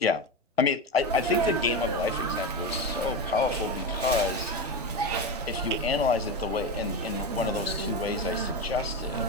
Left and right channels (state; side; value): normal; both; correlation 0.18